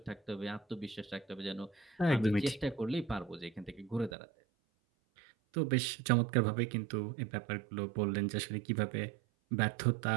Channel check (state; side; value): drops out; left; at 4.1 s